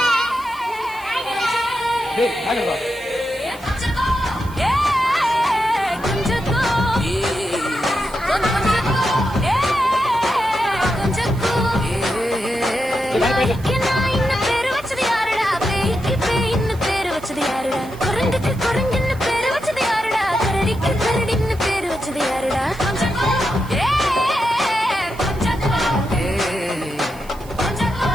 டேய் நாளைக்கு வா.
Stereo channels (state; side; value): noise; right; hiss, 22 dB below the sound